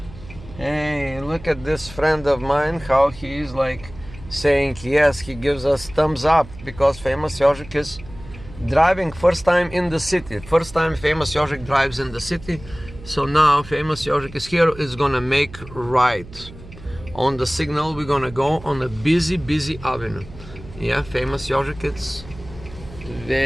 Hey, look at this friend of mine, how he is like saying yes, he gives us thumbs up because famous Yožik is driving first time in the city. First time famous Yožik drives in the city. So now famous Yožik is here, is gonna make right. On the signal we're gonna go on a busy avenue. Yeah, famous Yožik, it's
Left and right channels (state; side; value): noise; right; hum, 17 dB below the sound